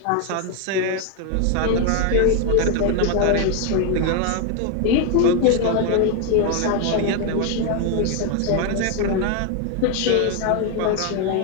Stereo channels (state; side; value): different; both; correlation 0.01